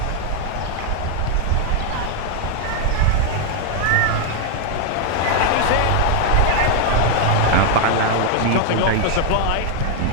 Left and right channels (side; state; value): both; different; correlation 0.00